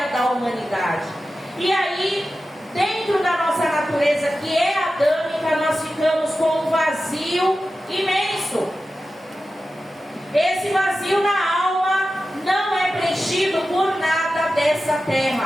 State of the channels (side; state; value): both; normal; correlation 0.93